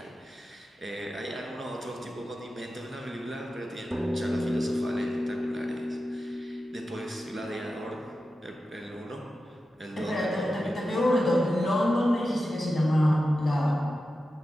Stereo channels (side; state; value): both; normal; correlation 0.92